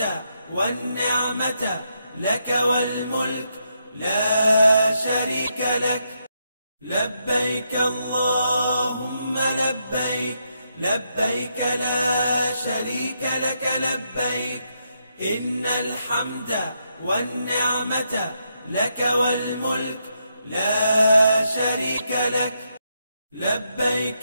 والنعمة لك والملك لا شريك لك. لبيك اللهم لبيك، لبيك لا شريك لك لبيك، إن الحمد والنعمة لك والملك لا شريك لك.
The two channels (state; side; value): inverted; both; correlation -0.80